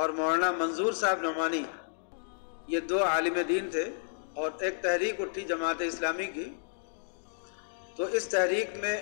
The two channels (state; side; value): silent; right; digital silence